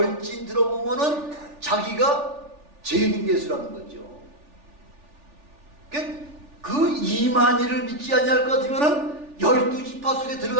들어보면은 자기가 재림 예수라는 거죠. 그 이만희를 믿지 아니할 것 같으면은 12지파 속에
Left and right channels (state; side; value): late; left; 3.4 ms